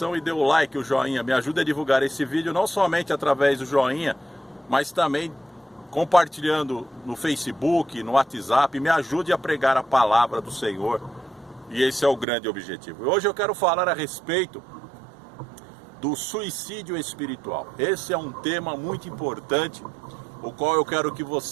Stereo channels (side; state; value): left; drops out; at 12.2 s